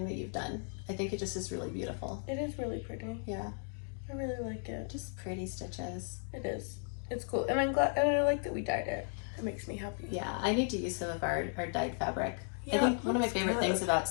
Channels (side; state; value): right; silent; 54 dB below the other